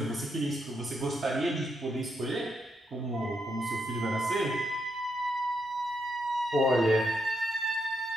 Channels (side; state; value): both; normal; correlation 0.80